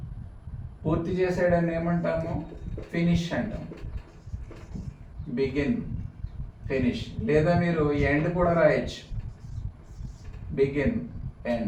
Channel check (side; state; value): both; identical; correlation 1.00